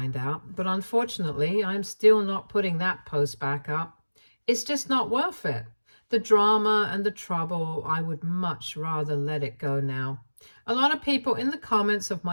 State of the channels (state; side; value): inverted; both; correlation -1.00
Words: out, but unfortunately, I'm still not putting that post back up. It's just not worth it. The drama and the trouble, I would much rather let it go now. A lot of people in the comments of